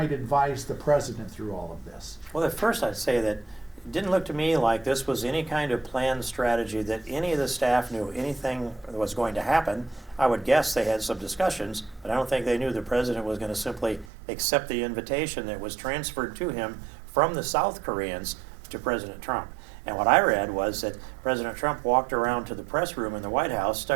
advise the president through all of this. Well, at first I'd say that it didn't look to me like this was any kind of planned strategy, that any of the staff knew anything was going to happen. I would guess they had some discussions, but I don't think they knew the president was going to simply accept the invitation that was transferred to him from the South Koreans to President Trump. And what I read was that President Trump walked around to the press room in the White House,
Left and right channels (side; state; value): left; drops out; at 14.1 s